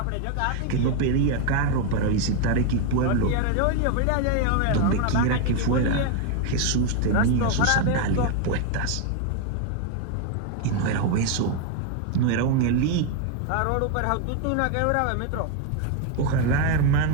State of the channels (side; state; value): both; different; correlation 0.01